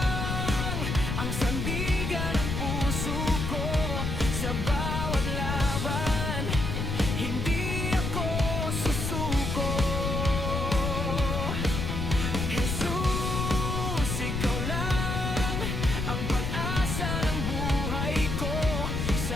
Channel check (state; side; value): noise; left; rumble, 2 dB below the sound